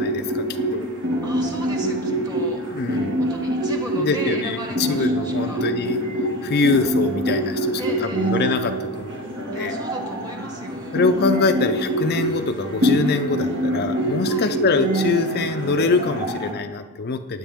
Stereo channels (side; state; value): both; normal; correlation 0.26